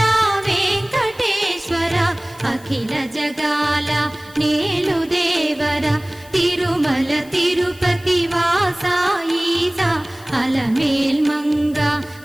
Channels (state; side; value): noise; left; hiss, 23 dB below the sound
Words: వెంకటేశ్వర అఖిల జగాల నేలు దేవర తిరుమల తిరుపతి వాస ఈస అలమేల్మంగ